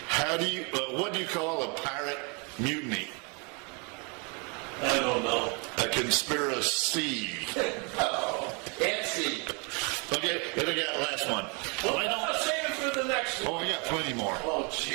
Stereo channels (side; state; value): left; quieter; 33.0 dB